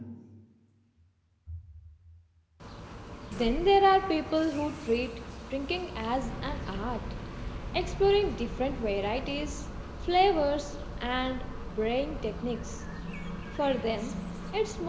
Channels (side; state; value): both; identical; correlation 1.00